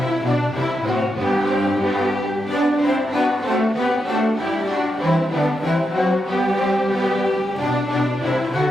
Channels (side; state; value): both; normal; correlation 0.86